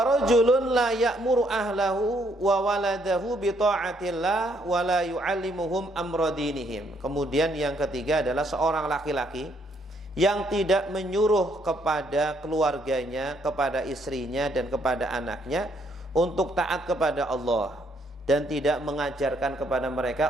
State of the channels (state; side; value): normal; both; correlation 0.70